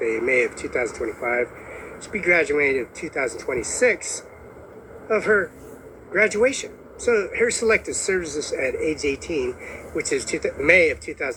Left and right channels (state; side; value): identical; both; correlation 1.00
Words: in May of 2025. She'll be graduating in 2026 of her graduation. So her selected services at age 18, which is May of